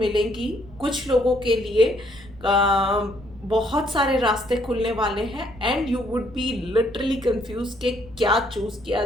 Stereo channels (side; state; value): left; noise; rumble, 21 dB below the sound